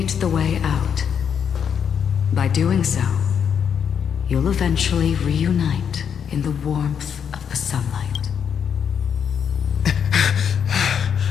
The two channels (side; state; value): right; quieter; 7.7 dB